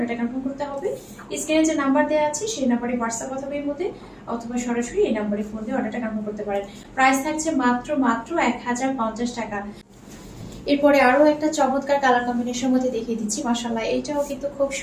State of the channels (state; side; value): identical; both; correlation 1.00